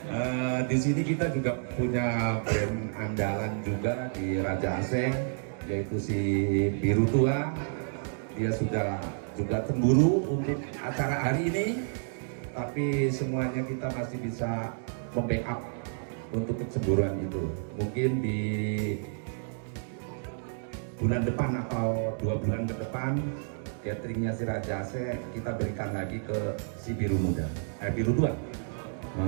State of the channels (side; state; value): left; silent; digital silence